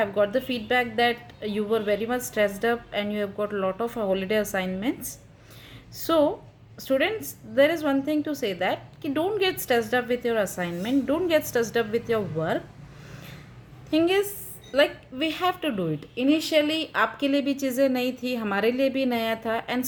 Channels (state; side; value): identical; both; correlation 1.00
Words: I've got the feedback that you were very much stressed up and you have got a lot of holiday assignments. So students, there is one thing to say that कि don't get stressed up with your assignment, don't get stressed up with your work. Thing is like we have to do it. Initially आपके लिए भी चीज़ें नई थी, हमारे लिए भी नया था, and